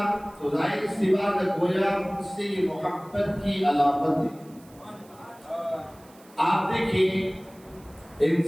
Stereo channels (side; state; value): right; noise; hiss, 27 dB below the sound